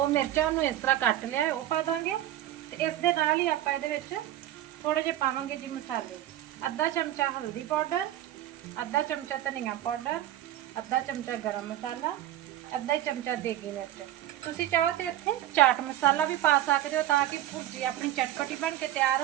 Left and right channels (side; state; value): left; quieter; 13.0 dB